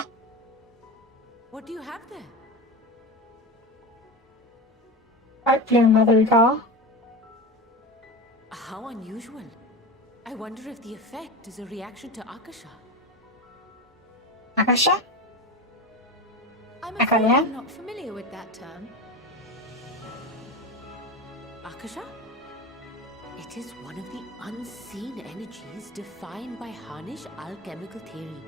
What do you have there? Right there, Mother Recall. How unusual. I wonder if the effect is a reaction to Akasha. Akasha? I'm afraid I'm not familiar with that term. Akasha? It is one of the unseen energies defined by Harnish alchemical theory.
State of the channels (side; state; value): both; normal; correlation 0.24